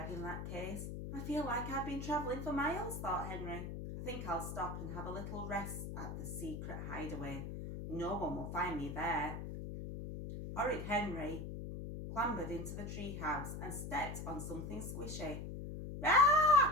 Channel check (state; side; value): noise; left; hum, 6 dB below the sound